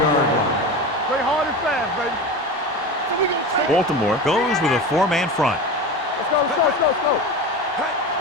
line. Play hard and fast, baby. Baltimore goes with a 4-man front. Let's go.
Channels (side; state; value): both; normal; correlation 0.27